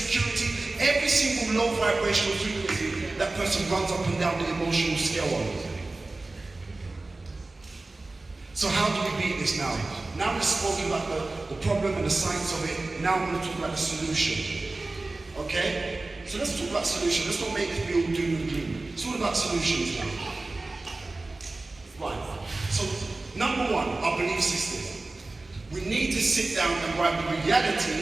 Every single low vibrational frequency, that person runs up and down the emotional scale on. So how do we beat this now? Now we've spoken about the problem and the science of it. Now we're going to talk about the solution. Okay? So let's talk about solution. Let's not make it be all doom and gloom. It's all about solutions now. Right. So number one, our belief system. We need to sit down and write the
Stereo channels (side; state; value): left; quieter; 3.2 dB